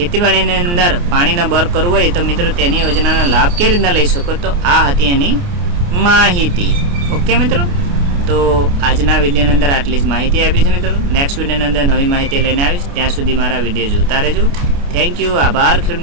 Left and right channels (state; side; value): late; left; 29 ms